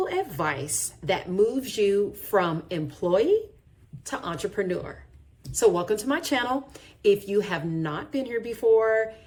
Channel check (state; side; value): identical; both; correlation 1.00